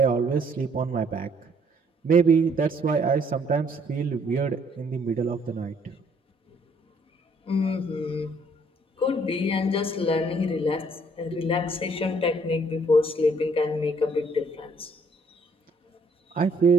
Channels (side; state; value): both; normal; correlation 0.65